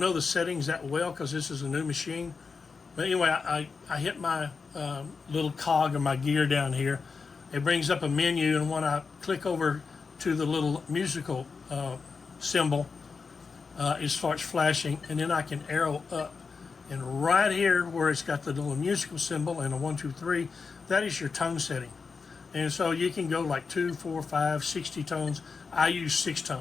the settings that well because this is a new machine. But anyway, I hit my little cog of my gear down here. It brings up a menu, and when I click over to the little musical symbol, it starts flashing, and then I can arrow up. And right here where it's got the little musical symbol and a 1, 2, 3, that is your tone setting. And so you can go like 2, 4, 5, 60 tones. I use 6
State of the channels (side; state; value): right; quieter; 5.0 dB